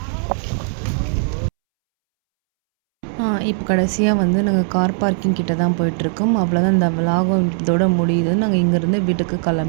இப்போ கடைசியாக வந்து நாங்கள் கார் பார்க்கிங் கிட்ட தான் போயிட்டுருக்கோம். அவ்வளோதான், இந்த விலாகம் இதோட முடியுது. நாங்கள் இங்கேருந்து வீட்டுக்கு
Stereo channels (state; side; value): silent; left; 67 dB below the other